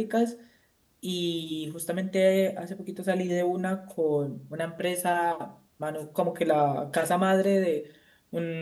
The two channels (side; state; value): both; identical; correlation 1.00